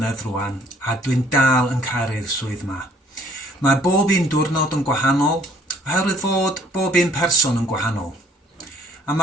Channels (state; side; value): normal; both; correlation 0.60